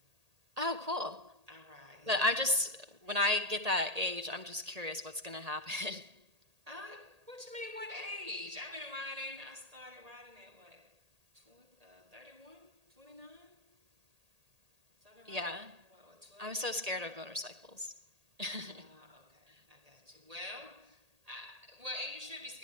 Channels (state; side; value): late; left; 1.8 ms